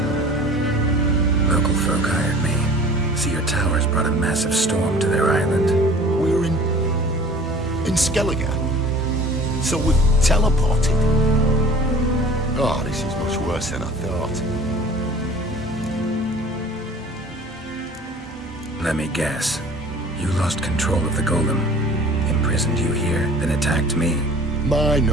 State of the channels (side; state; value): both; normal; correlation 0.46